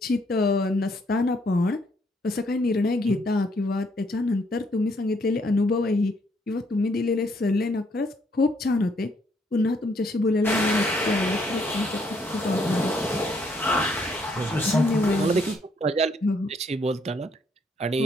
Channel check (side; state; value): both; normal; correlation 0.70